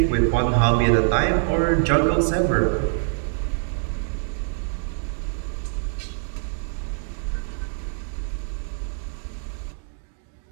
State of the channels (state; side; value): silent; left; digital silence